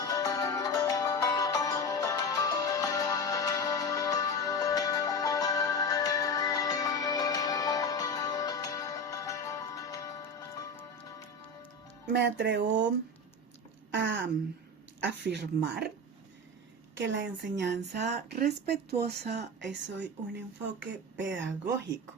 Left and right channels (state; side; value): normal; both; correlation 0.24